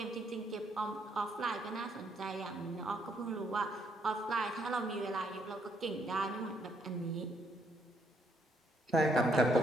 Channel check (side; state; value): both; normal; correlation 0.72